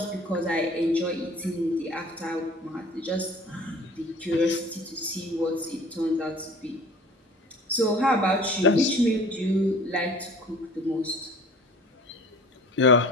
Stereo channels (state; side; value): normal; both; correlation 0.46